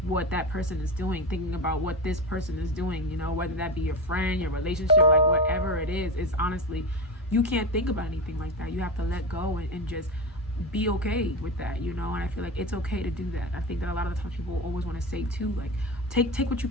what that person is doing, thinking about what this person is doing, you know, whether that be your friend, your relationship, like whatever it is. It's honestly, you can't think about anything like that. You have to let go and just be okay with that, you know. And I feel like it's okay to do that. I think that a lot of the times people always want to say too, like take what you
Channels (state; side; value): normal; both; correlation 0.20